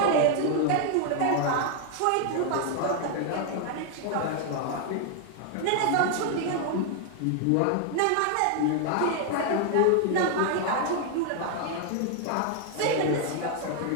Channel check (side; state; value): both; different; correlation 0.00